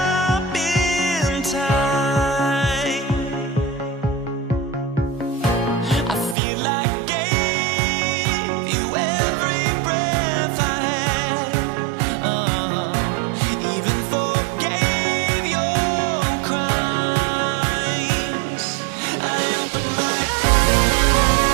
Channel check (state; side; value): drops out; left; at 6.4 s